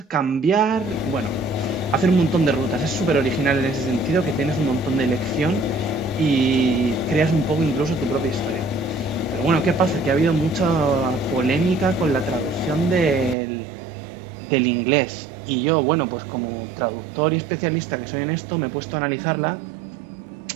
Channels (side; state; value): left; drops out; at 13.4 s